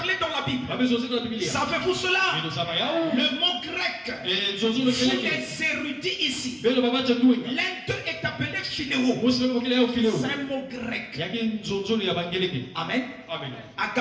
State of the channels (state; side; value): identical; both; correlation 1.00